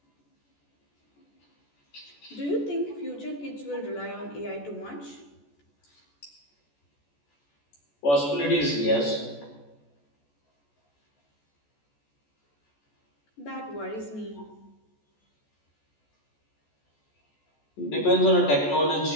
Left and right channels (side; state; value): right; late; 14 ms